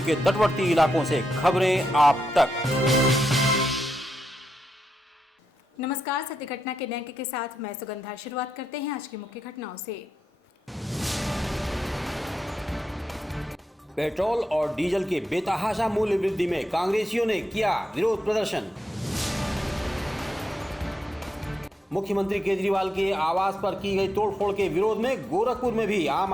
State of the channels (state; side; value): normal; both; correlation 0.85